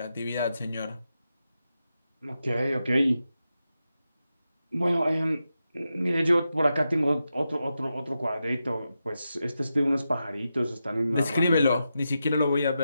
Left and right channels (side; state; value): both; inverted; correlation -0.89